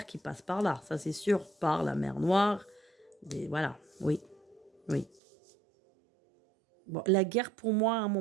qui passent par là, ça c'est sûr, par la mer Noire. Voilà, oui, oui. Bon, la guerre, pour moi, à un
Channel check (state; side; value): drops out; left; at 5.2 s